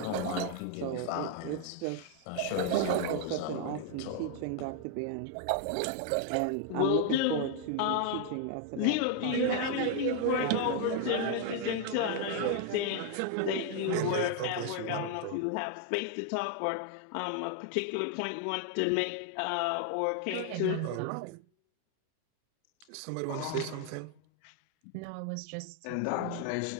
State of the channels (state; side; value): different; both; correlation 0.00